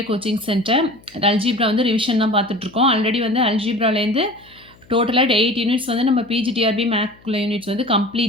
coaching centre. Algebra வந்து revision தான் பார்த்துட்ருக்கோம். ஆல்ரெடி வந்து அல்ஜீப்ராலேருந்து டோட்டலாக 8 யூனிட்ஸ் வந்து நம்ம பிஜிடிஆர்பி மேக்ல யூனிட்ஸ் வந்து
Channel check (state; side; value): noise; left; hum, 28 dB below the sound